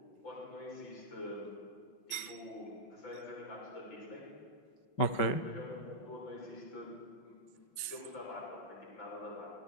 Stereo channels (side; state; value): right; late; 5.4 ms